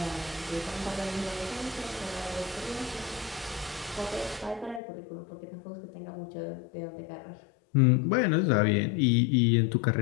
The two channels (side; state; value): right; drops out; at 4.8 s